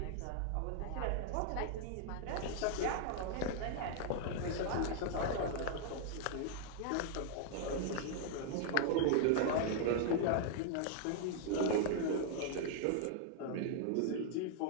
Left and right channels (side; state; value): both; different; correlation -0.01